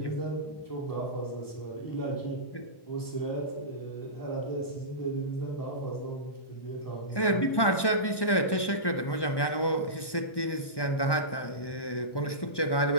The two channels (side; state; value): right; late; 1.1 ms